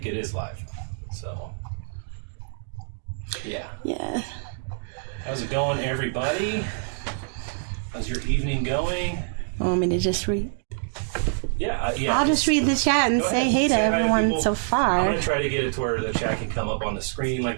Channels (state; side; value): silent; left; digital silence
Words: it is live, so yeah. Yeah. How's it going, everybody? How's your evening going? Want me to just read? Yeah, I'll just read the chat and say hey to everyone so far. I'm going to try to get it to where the chat can come up on the screen